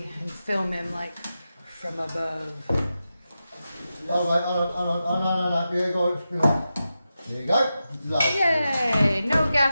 and film him like from above. Oh, no. There you go. There you go. Lovely. Yay! No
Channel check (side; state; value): both; inverted; correlation -0.91